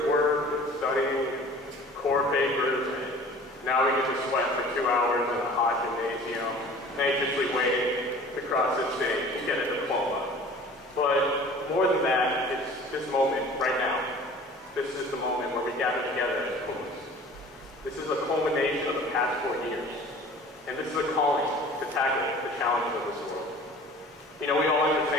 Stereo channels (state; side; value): normal; both; correlation 0.45